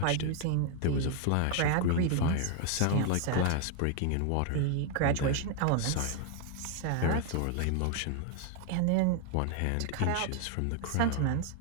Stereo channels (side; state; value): both; different; correlation 0.00